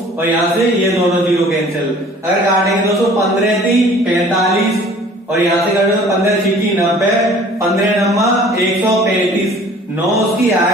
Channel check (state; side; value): normal; both; correlation 0.50